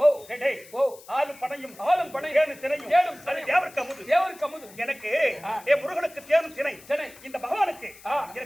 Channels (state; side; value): noise; left; hiss, 21 dB below the sound